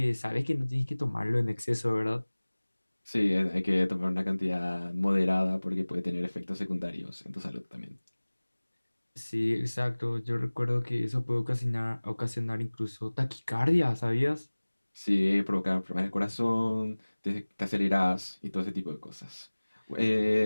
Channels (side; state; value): both; inverted; correlation -1.00